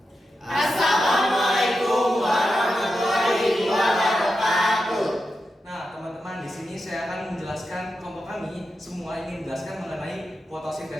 Assalamualaikum warahmatullahi wabarakatuh. Nah, teman-teman, di sini saya akan menjelaskan kelompok kami semua ingin menjelaskan mengenai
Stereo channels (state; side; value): normal; both; correlation 0.89